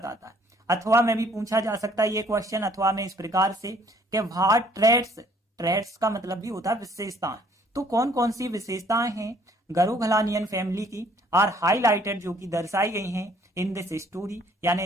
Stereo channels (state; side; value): normal; both; correlation 0.60